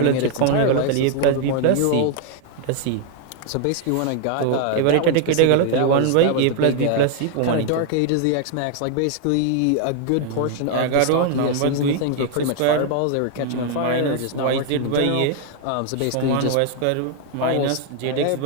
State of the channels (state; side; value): different; both; correlation 0.00